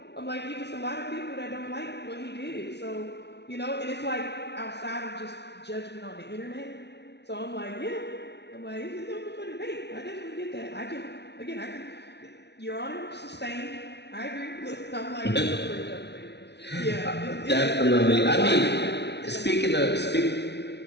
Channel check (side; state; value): right; late; 0.50 ms